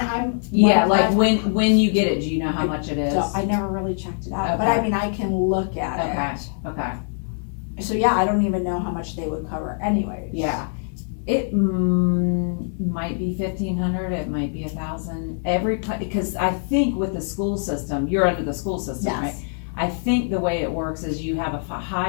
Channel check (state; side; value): silent; right; digital silence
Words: Yeah, like I'm- when you get it, do you know how much it is? so I never really checked it out, but Okay. I mean, I can look at Okay, it. okay, So yeah, I don't even know how much they would cover anyways. yeah. It might be 1,500, it might be 1,000, because I think with the school system, you're under the school system, right? Yes, I think the way it works is you have a